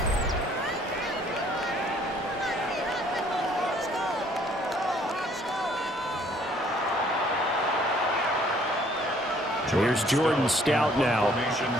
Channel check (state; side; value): normal; both; correlation 0.61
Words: Here's Jordan Stout now.